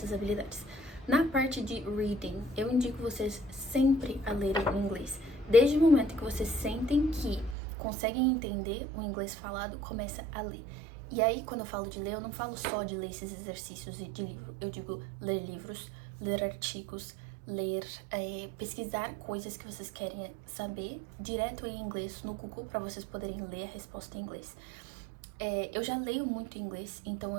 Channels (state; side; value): drops out; left; at 7.6 s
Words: habilidades? Na parte de reading, eu indico vocês sempre a lerem em inglês. Desde o momento que vocês sentem que conseguem entender o inglês falado, começa a ler. E aí, quando eu falo de ler, eu não falo só de ler esses exercícios de livro. Eu digo ler livros, ler artigos, ler, pesquisar coisas que vocês querem saber direto em inglês no Google para vocês poderem ler a resposta em inglês. Eu já leio muito inglês, então